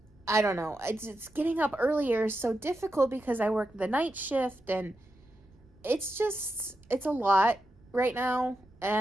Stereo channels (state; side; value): noise; right; rumble, 28 dB below the sound